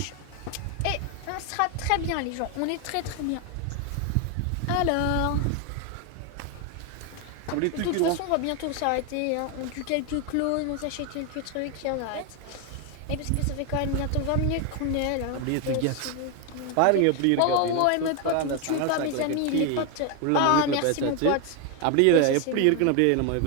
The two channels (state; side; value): different; both; correlation 0.01